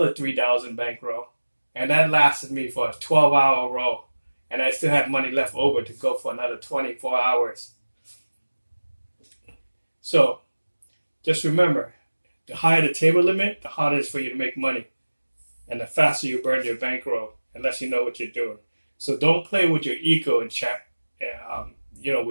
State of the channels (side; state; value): both; inverted; correlation -1.00